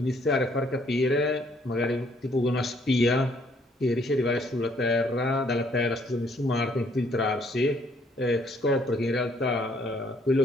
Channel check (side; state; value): both; normal; correlation 0.66